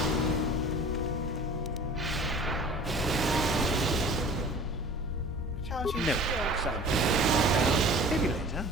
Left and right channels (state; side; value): normal; both; correlation 0.44